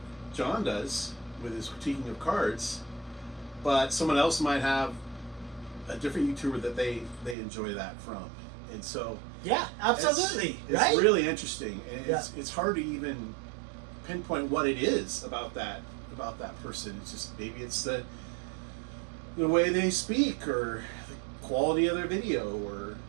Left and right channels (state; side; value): drops out; left; at 7.4 s